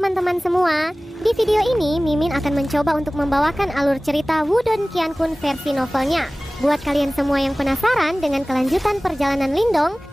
teman-teman semua, di video ini Mimin akan mencoba untuk membawakan alur cerita Wudong Qiankun versi novelnya. Buat kalian semua yang penasaran dengan kelanjutan perjalanan Lindong,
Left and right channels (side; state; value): both; normal; correlation 0.98